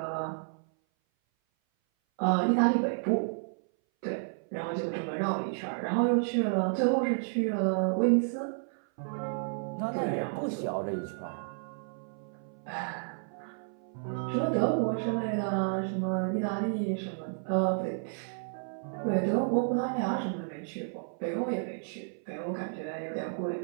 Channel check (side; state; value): left; silent; 57 dB below the other